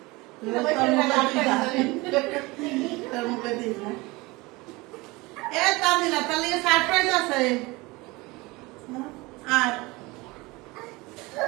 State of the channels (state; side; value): quieter; left; 23.1 dB